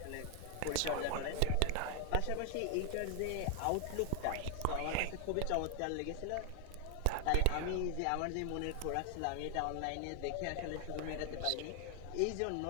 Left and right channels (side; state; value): both; different; correlation 0.00